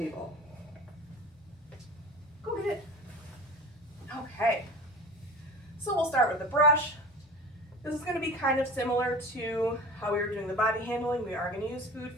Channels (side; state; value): both; normal; correlation 0.37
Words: Go get it. Okay. So we'll start with the brush. This is going to be kind of similar to how we were doing the body handling. We are going to use food